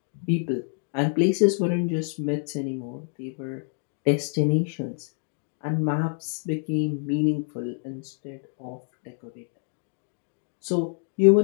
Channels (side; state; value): right; silent; 58 dB below the other